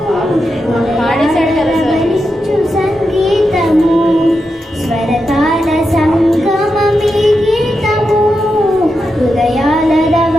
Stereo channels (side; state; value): both; normal; correlation 0.87